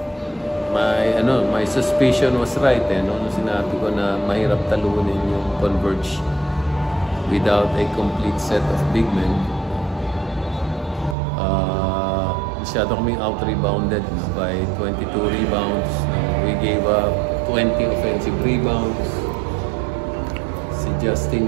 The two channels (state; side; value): drops out; left; at 11.2 s